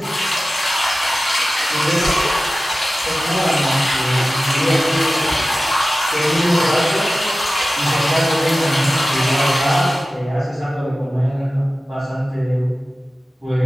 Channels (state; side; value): normal; both; correlation 0.95